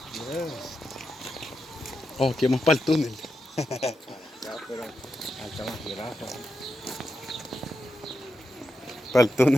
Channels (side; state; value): both; normal; correlation 0.86